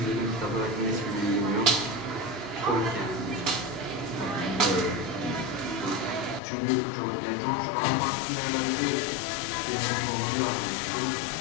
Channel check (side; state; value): right; drops out; at 6.4 s